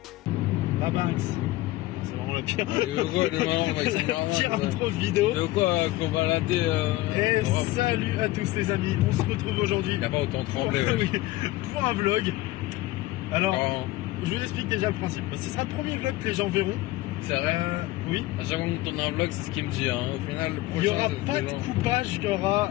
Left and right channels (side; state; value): right; quieter; 17.8 dB